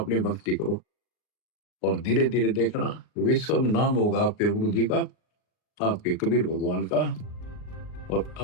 भक्ति करो और धीरे धीरे देखना विश्व में नाम होगा आपके गुरु जी का, आपके कबीर भगवान का, और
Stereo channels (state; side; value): late; right; 39 ms